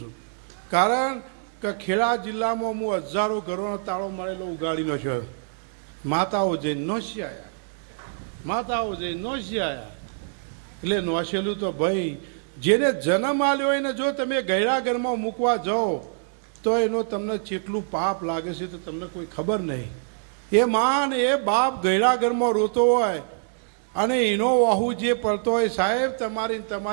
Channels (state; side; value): silent; left; digital silence